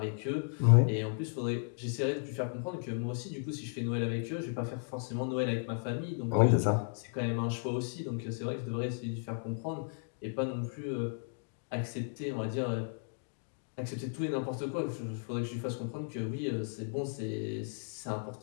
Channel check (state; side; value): silent; right; digital silence